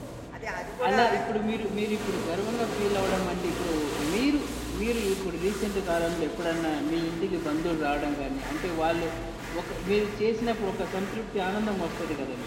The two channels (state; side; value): identical; both; correlation 1.00